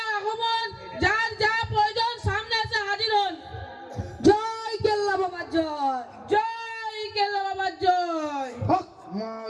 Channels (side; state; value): both; identical; correlation 1.00